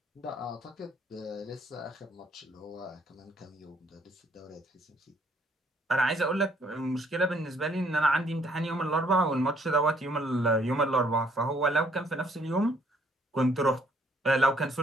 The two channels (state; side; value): normal; both; correlation 0.65